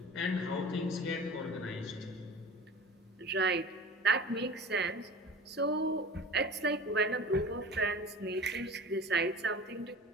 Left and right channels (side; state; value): both; normal; correlation 0.38